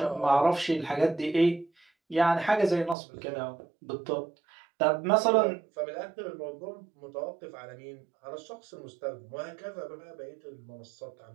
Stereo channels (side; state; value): left; drops out; at 3.0 s